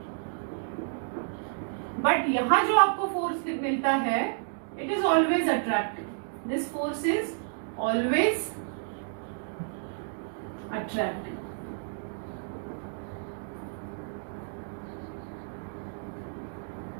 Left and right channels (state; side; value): silent; left; digital silence